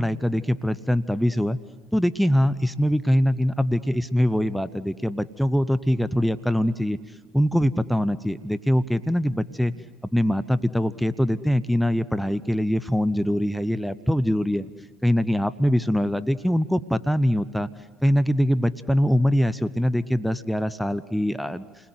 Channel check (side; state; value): both; normal; correlation 0.97